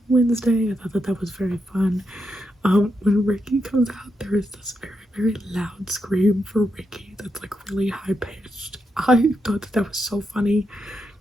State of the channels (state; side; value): normal; both; correlation 0.84